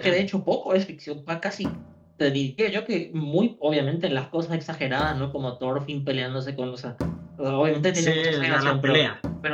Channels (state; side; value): identical; both; correlation 1.00